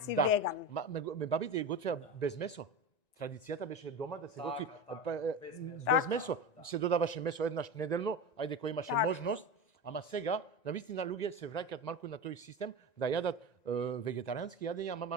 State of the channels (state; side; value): late; right; 1.9 ms